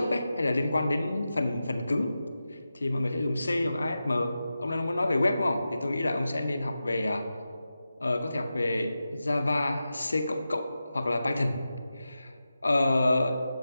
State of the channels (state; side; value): inverted; both; correlation -0.92